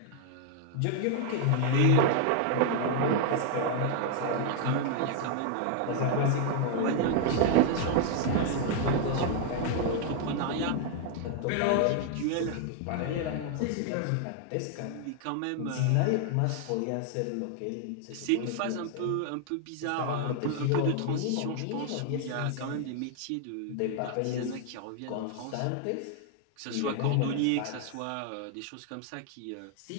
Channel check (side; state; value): both; different; correlation 0.00